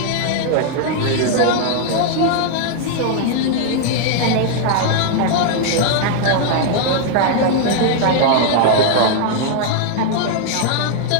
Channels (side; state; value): both; different; correlation 0.00